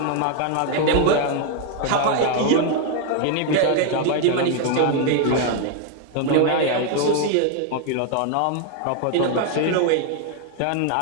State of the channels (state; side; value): different; both; correlation 0.00